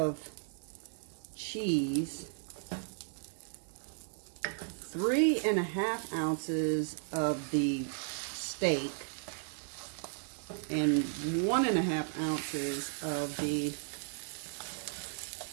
cheese, 3.5 ounces of the steak, and 1.5 ounces of the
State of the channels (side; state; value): left; silent; 54 dB below the other